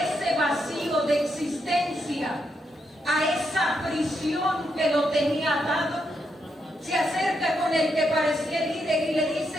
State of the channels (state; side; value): normal; both; correlation 0.81